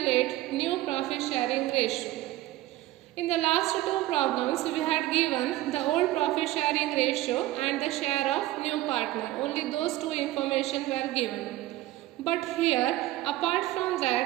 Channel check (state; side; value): quieter; left; 16.3 dB